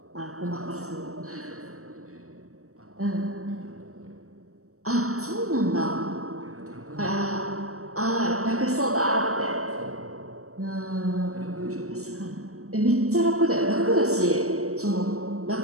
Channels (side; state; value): left; late; 0.65 ms